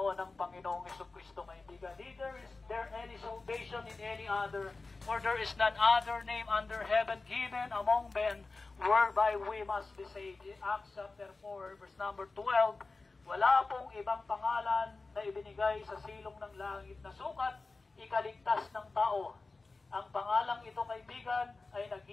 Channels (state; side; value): quieter; right; 3.7 dB